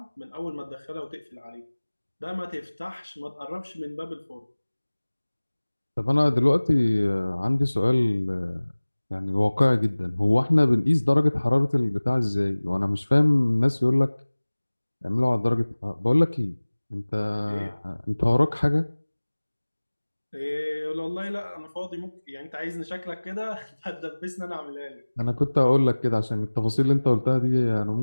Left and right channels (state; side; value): inverted; both; correlation -1.00